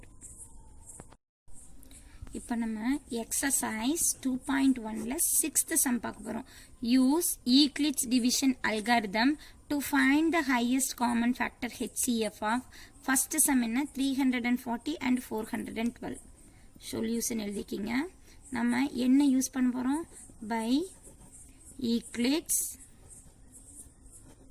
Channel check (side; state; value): both; identical; correlation 1.00